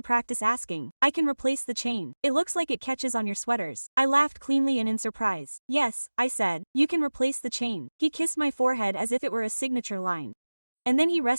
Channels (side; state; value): both; inverted; correlation -1.00